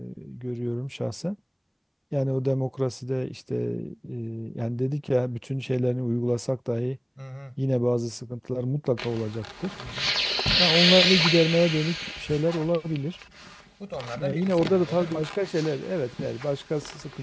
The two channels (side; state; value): both; identical; correlation 1.00